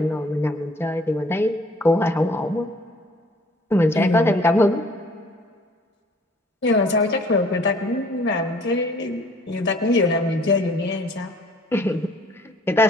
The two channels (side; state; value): both; normal; correlation 0.56